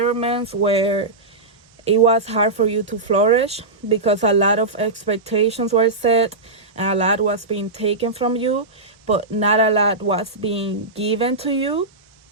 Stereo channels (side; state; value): left; quieter; 3.2 dB